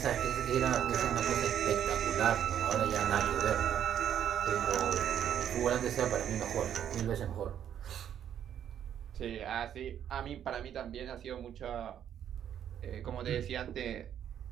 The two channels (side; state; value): left; quieter; 9.7 dB